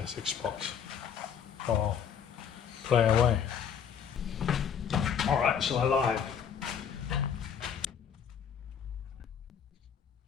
6 spots. So I'll play away. Alright, so I lied.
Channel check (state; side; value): quieter; right; 7.8 dB